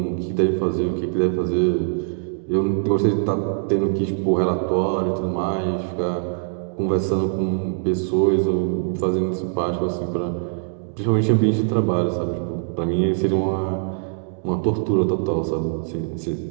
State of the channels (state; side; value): silent; left; digital silence